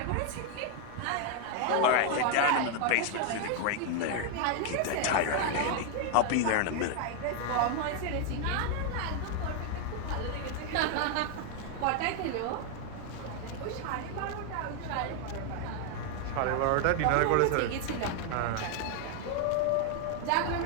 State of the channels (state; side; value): different; both; correlation 0.00